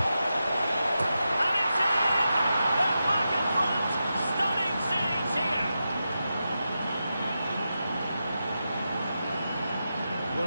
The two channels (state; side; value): inverted; both; correlation -0.89